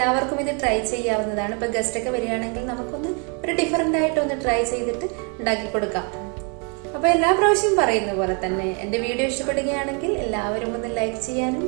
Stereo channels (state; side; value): quieter; left; 36.6 dB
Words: ഇത് ട്രൈ ചെയ്യാവുന്നതാണ്. ഇപ്പോൾ ഗസ്റ്റൊക്കെ വരികയാണെങ്കിൽ നമുക്കൊന്ന് ഒരു ഡിഫറെൻ്റ് ആയിട്ടൊന്ന് ട്രൈ ചെയ്തിട്ട് ഉണ്ടാക്കി കൊടുക്കാം. അപ്പോൾ എല്ലാ പ്രാവശ്യവും പറയുന്ന പോലെ തന്നെ എൻ്റെ വീഡിയോ ഇഷ്ടപ്പെടുകയാണെങ്കിൽ എല്ലാവരും ഒന്ന് ലൈക്ക് ചെയ്യാനും